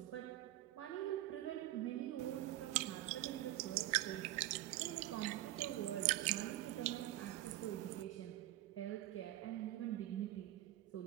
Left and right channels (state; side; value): quieter; left; 15.2 dB